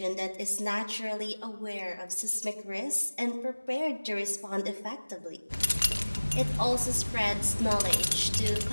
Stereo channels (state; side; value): inverted; both; correlation -1.00